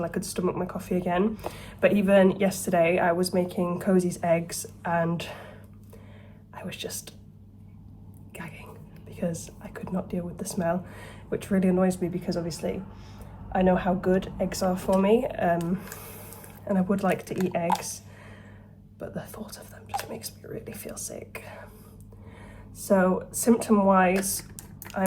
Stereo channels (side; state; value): both; identical; correlation 1.00